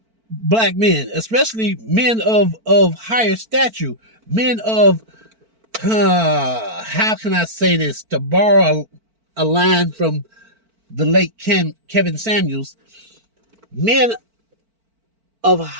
black men, especially men of higher stature, men of, how can I say this, to borrow a line from the late Kevin Samuels, men of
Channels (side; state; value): left; late; 4.5 ms